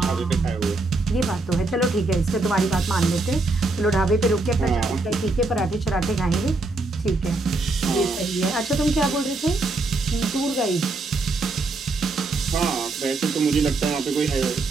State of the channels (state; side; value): quieter; left; 3.3 dB